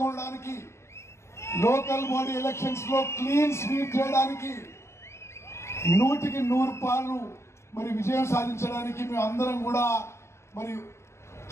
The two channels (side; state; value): right; late; 0.13 ms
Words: కొనడానికి, లోకల్ బాడీ ఎలక్షన్స్ లో క్లీన్ స్వీప్ చేయడానికి, 100% మరి విజయం సాధించడానికి మేము అందరం కూడా మరి